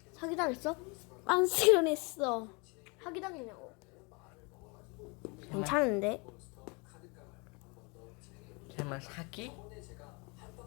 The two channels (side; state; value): right; quieter; 30.2 dB